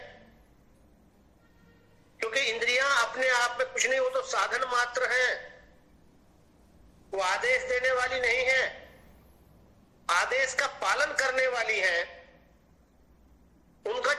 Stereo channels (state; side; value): identical; both; correlation 1.00